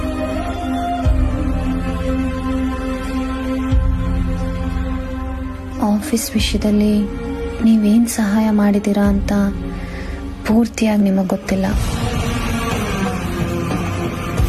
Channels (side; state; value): both; identical; correlation 1.00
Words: Office ವಿಷಯದಲ್ಲಿ ನೀವೇನು ಸಹಾಯ ಮಾಡಿದ್ದೀರಾ ಅಂತ ಪೂರ್ತಿಯಾಗಿ ನಿಮಗೆ ಗೊತ್ತಿಲ್ಲ.